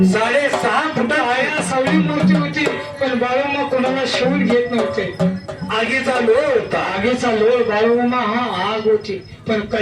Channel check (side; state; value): both; identical; correlation 1.00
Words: 6.5 फुट. काळ्या सावळी मूर्ती होती, पण बाळूमा कोणाला शिवून घेत नव्हते. आगीचा लोळ होता. आगीचा लोळ बाळूमा हा आग होती, पण